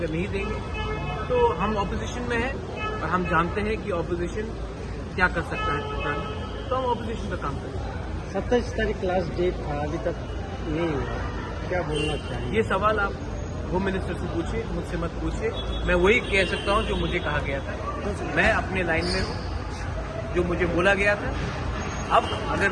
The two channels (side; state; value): both; identical; correlation 1.00